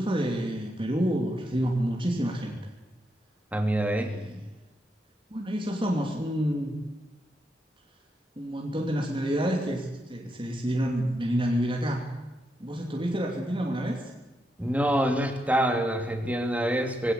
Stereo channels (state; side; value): normal; both; correlation 0.82